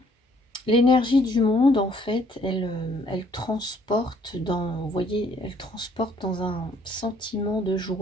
l'énergie du monde, en fait, elle transporte dans, vous voyez, elle transporte dans un sentiment de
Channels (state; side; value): normal; both; correlation 0.63